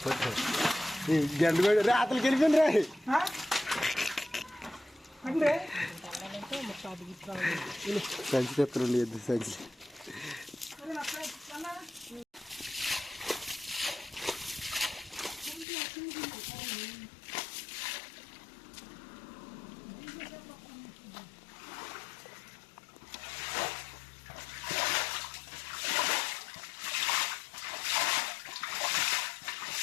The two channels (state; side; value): drops out; right; at 15.7 s